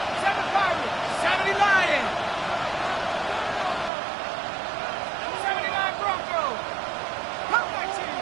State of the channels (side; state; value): left; drops out; at 3.9 s